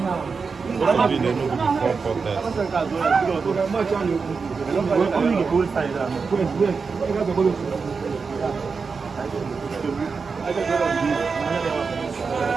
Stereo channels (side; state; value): left; quieter; 5.0 dB